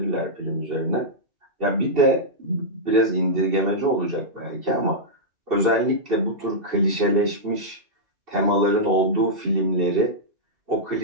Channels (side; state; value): left; late; 2.7 ms